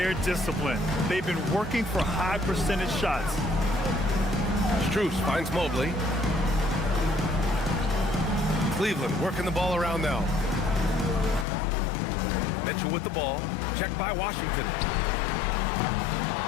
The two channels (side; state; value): right; drops out; at 11.5 s